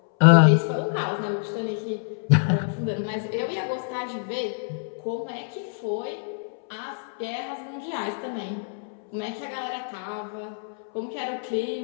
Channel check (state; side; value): silent; right; 61 dB below the other